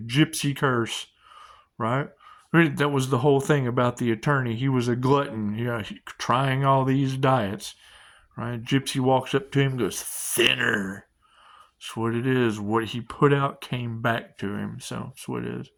curse, right? That was the whole thing about the attorney. He was a glutton, trying all these diets, right? Gypsy walks up to him and goes, thinner. That's what it is. What he put out came back to him. So that's what it is.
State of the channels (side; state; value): both; identical; correlation 1.00